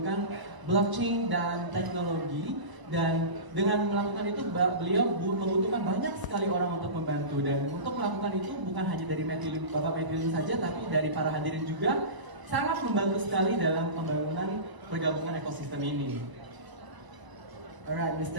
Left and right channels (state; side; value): late; left; 1.0 ms